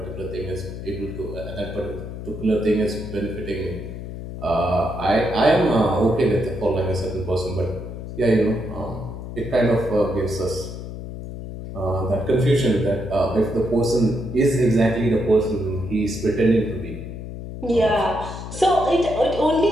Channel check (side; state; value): left; noise; hum, 9 dB below the sound